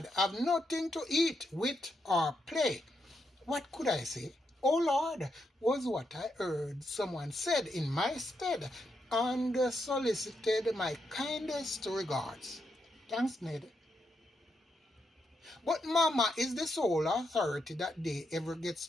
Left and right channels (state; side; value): normal; both; correlation 0.82